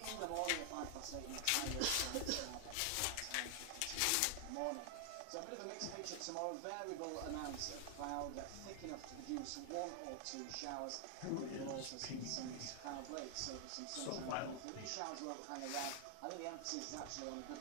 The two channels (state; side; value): different; both; correlation 0.00